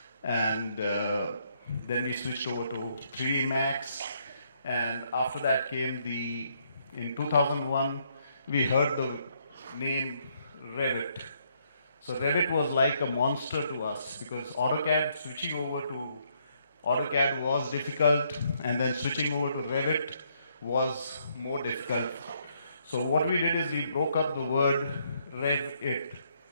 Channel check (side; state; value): both; inverted; correlation -0.71